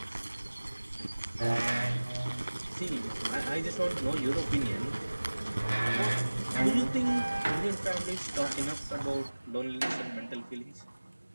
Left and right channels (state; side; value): inverted; both; correlation -1.00